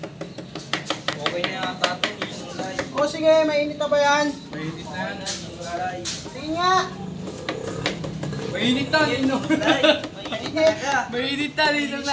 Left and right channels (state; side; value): identical; both; correlation 1.00